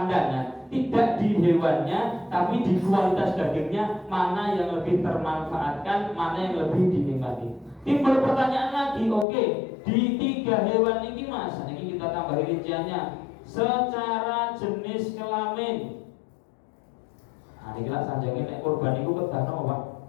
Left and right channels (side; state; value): right; drops out; at 9.2 s